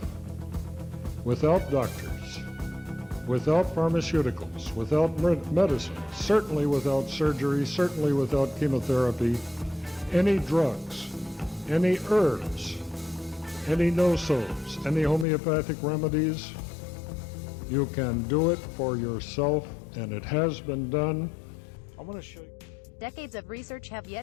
without doctors, without pharmaceuticals, without medicine, certainly without surgery, certainly without chemotherapy, any drugs, any herbs, any no-sos, any homeopathic remedies. You can do it for yourself, and it has been done. I want to show you. Decades of research have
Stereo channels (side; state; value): right; drops out; at 15.2 s